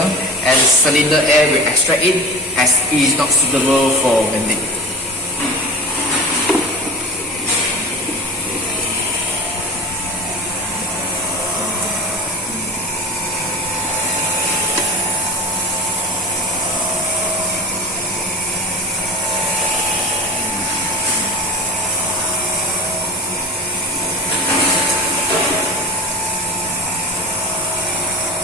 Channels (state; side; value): normal; both; correlation 0.30